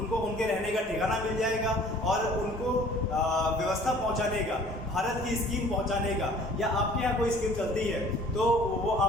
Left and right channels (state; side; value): normal; both; correlation 0.52